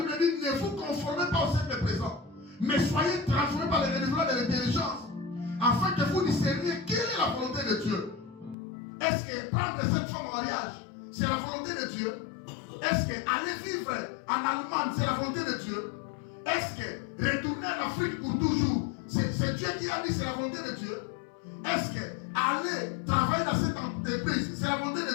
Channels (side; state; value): right; drops out; at 8.6 s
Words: dit: ne vous conformez pas au siècle présent, mais soyez transformés par le renouvellement de l'intelligence, afin que vous discerniez quelle est la volonté de Dieu. Est-ce que prendre cette femme en mariage, c'est la volonté de Dieu? Est-ce que aller vivre en Allemagne, c'est la volonté de Dieu? Est-ce que retourner en Afrique pour toujours, c'est Dieu qui a dit c'est la volonté de Dieu? Est-ce que aller travailler dans cette entreprise, c'est la volonté